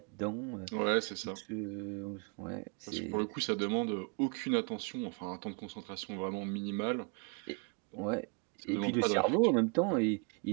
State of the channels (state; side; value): quieter; left; 36.7 dB